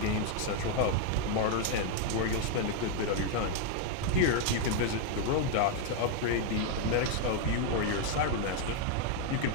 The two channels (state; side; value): different; both; correlation 0.00